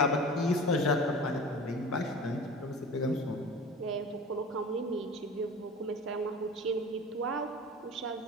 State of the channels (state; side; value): normal; both; correlation 0.37